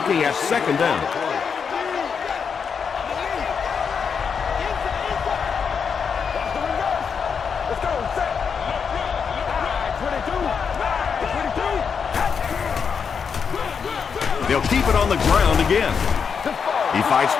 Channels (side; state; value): right; quieter; 6.3 dB